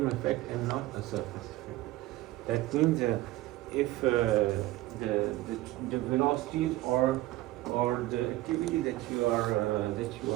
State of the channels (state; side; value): quieter; left; 17.2 dB